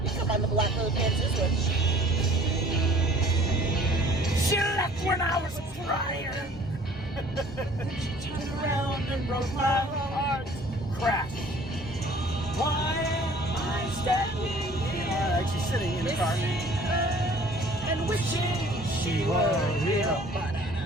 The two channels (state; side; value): normal; both; correlation 0.52